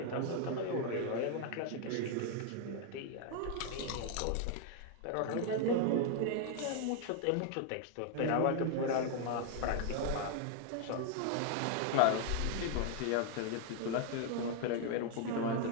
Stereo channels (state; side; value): different; both; correlation 0.00